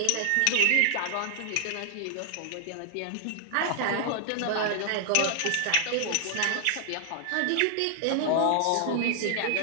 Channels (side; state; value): both; different; correlation -0.01